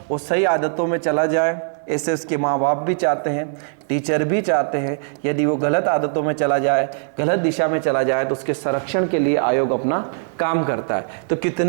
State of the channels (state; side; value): silent; left; digital silence